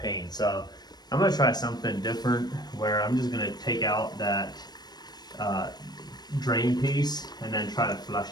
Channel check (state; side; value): late; right; 0.19 ms